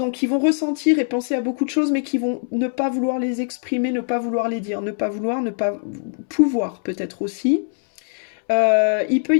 qui vont ressentir et penser à beaucoup de choses, mais qui vont ne pas vouloir les exprimer, ne pas vouloir les dire, ne pas pouvoir peut-être aussi. Il peut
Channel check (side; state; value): right; silent; 65 dB below the other